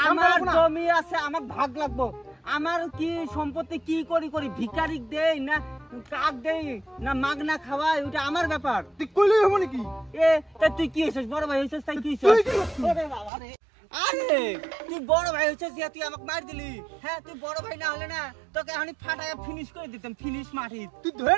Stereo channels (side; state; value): left; drops out; at 13.3 s